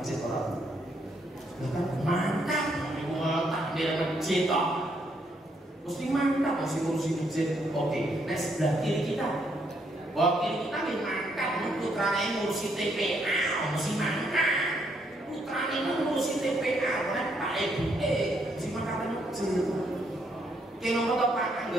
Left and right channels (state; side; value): normal; both; correlation 0.73